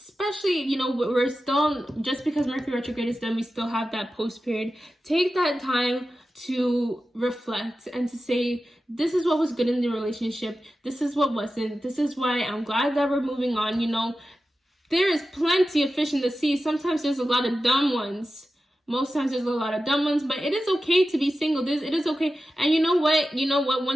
you know, we're still, just because Mercury retrograde is done, we still have that post period. Take that time to reflect and to say, this is what was good in the relationship, this is what wasn't, this is why I'm glad that we're moving on. You know, there is plenty of fish in the sea. Sometimes there's a lot of dumb ones. Most times there's a lot of dumb ones, but it is okay to be single. It is okay. And you know what?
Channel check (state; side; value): normal; both; correlation 0.93